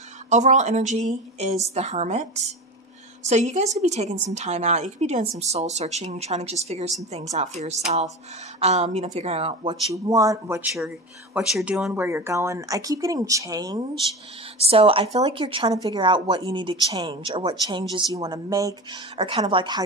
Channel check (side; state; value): both; normal; correlation 0.28